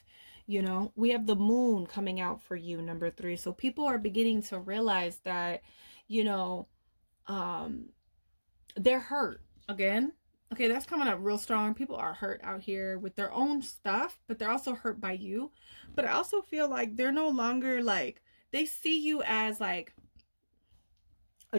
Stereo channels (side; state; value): both; inverted; correlation -1.00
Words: You know, we have the moon coming out for you, number 3. So people are beginning to realize that, you know, they're hurt again. Okay, that's coming up real strong. People are hurt out here with their own stuff, but they're also hurt by you. But I also feel like they're no longer, like, they see you as like a